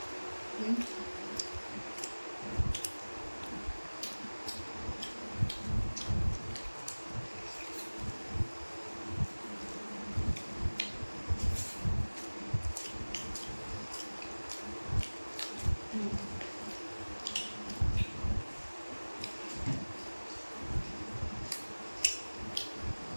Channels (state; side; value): inverted; both; correlation -1.00